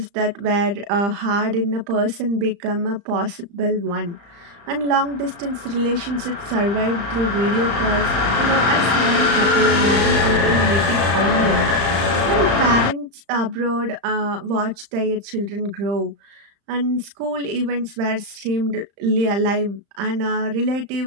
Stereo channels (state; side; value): late; left; 35 ms